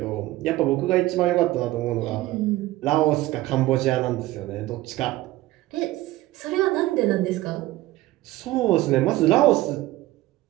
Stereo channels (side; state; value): left; quieter; 17.1 dB